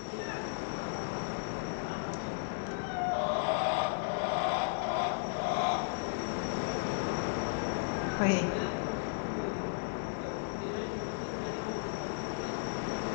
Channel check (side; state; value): right; silent; digital silence